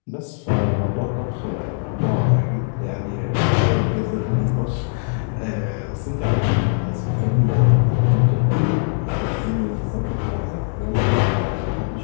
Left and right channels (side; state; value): right; silent; digital silence